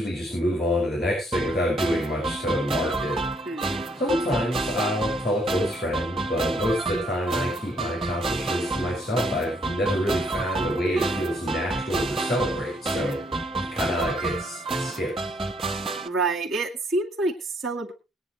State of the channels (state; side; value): normal; both; correlation 0.69